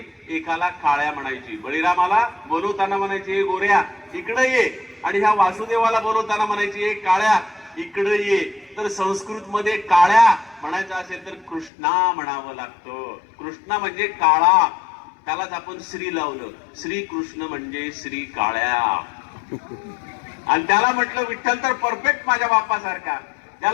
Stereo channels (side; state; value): right; drops out; at 11.7 s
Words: एकाला काळ्या म्हणायची. बळीरामाला बोलवताना म्हणायची हे गोऱ्या इकडे ये, आणि ह्या वासुदेवाला बोलवताना म्हणायची हे काळ्या इकडे ये. तर संस्कृत मध्ये काळ्या म्हणायचं असेल तर कृष्णा म्हणावं लागतं. कृष्णा म्हणजे काळा, त्यालाच आपण श्री लावलं. श्री कृष्ण म्हणजे श्री काळ्या. आणि त्याला म्हटलं विठ्ठल तर परफेक्ट माझ्या बाप्पासारखा.